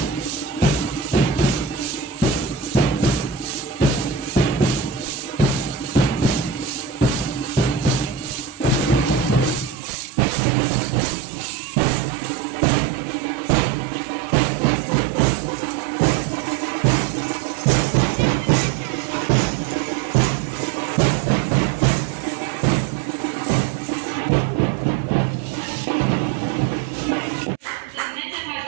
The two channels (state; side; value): drops out; left; at 9.8 s